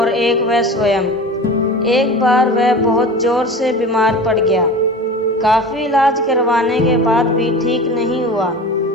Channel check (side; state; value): both; normal; correlation 0.34